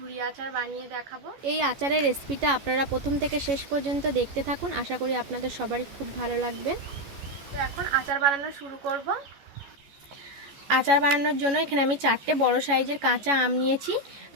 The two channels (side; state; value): left; late; 14 ms